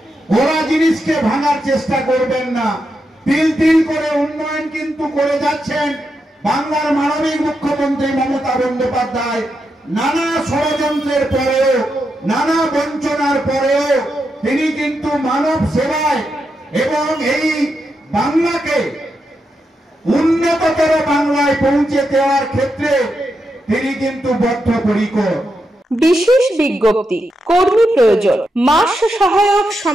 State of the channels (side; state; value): both; normal; correlation 0.85